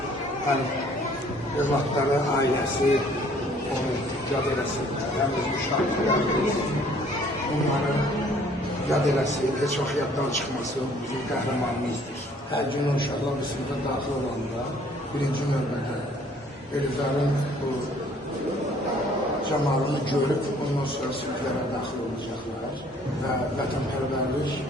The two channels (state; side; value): normal; both; correlation 0.58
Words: övladları, ailəsi, onu yad eləsinlər, həm öz müşahidlərimiz, onların yad eləsin, heç vaxt yaddan çıxmasın, bizim qəhrəmanımızdır. Hər gün uşaqlar bir sınıfa daxil olanda, birinci növbədə Elizarın bu camalını görüb, ondan sonra sınıflara daxil olacaqlar və vətənpərvərlik